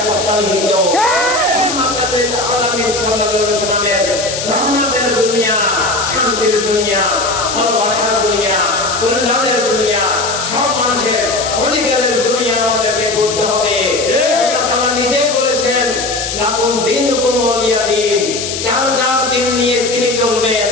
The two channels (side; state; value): left; noise; hiss, 5 dB below the sound